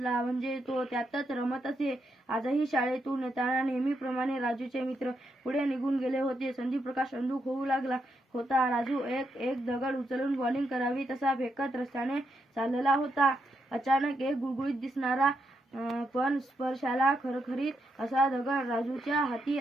म्हणजे तो त्यातच रमत असे. आजही शाळेतून येताना नेहमीप्रमाणे राजूचे मित्र पुढे निघून गेले होते. संदीपप्रकाश अंधुक होऊ लागला होता. राजू एक दगड उचलून बॉलिंग करावी तसा फेकत रस्त्याने चालला होता. अचानक एक गुळगुळीत दिसणारा पण स्पर्शाला खरखरीत असा दगड राजूच्या हाती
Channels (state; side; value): normal; both; correlation 0.81